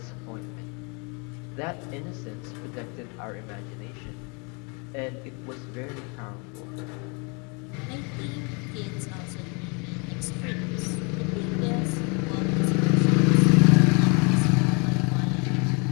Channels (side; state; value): right; quieter; 33.3 dB